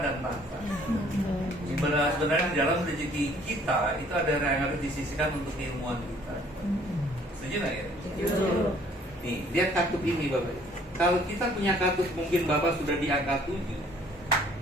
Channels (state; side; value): normal; both; correlation 0.59